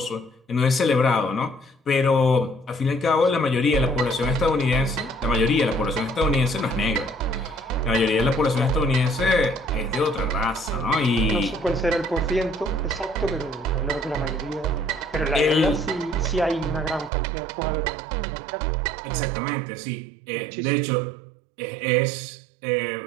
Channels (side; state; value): left; drops out; at 17.1 s